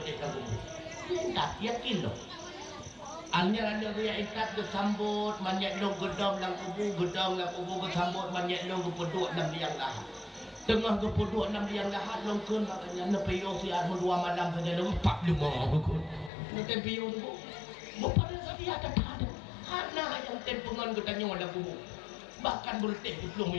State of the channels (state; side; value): drops out; right; at 16.3 s